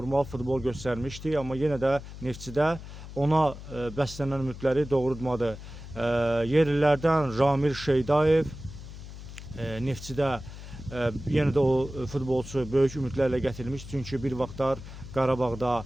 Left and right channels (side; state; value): left; noise; hum, 13 dB below the sound